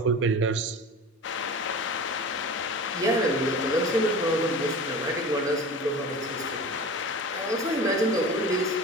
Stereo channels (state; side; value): normal; both; correlation 0.35